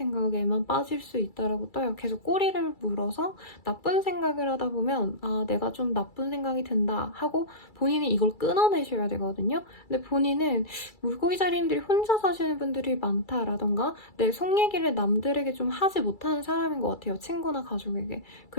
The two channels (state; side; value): late; right; 2.3 ms